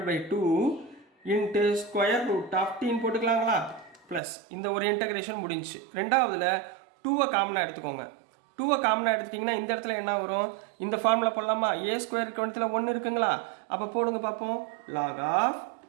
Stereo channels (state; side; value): drops out; left; at 4.2 s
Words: by 2 into square root of டீன்னு போட்டுக்கலாங்களா, ப்ளஸ் இந்த ஒரு இன்டகிரேஷன் முடிஞ்சு. ரெண்டாவதுல 2வை காமனாக எடுத்துக்கோங்க. 2வை காமனாக எடுத்துட்டிங்கன்னா இந்த இடத்துல என்ன வரும், இந்த ஃபார்முலா போடலாமா, ஏ ஸ்கொயர் கவனத்தில் 1 இருக்குங்களா? அப்போ போடுங்க பார்ப்போம், log of